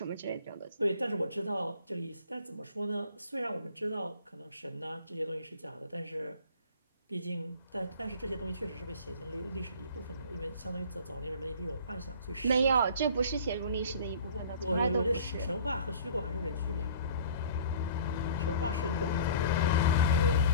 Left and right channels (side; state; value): both; inverted; correlation -0.45